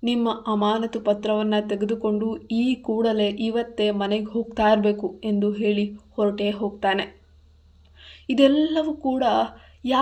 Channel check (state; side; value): identical; both; correlation 1.00